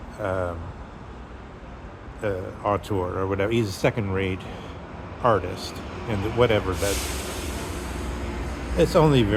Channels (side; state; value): both; identical; correlation 1.00